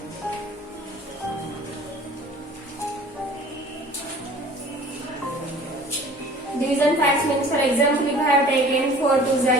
Division facts means, for example, if I have taken 4 2s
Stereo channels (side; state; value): both; normal; correlation 0.47